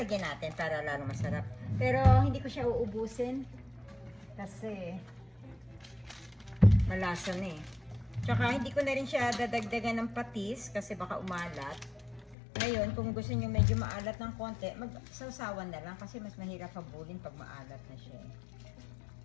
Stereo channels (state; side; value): drops out; right; at 12.4 s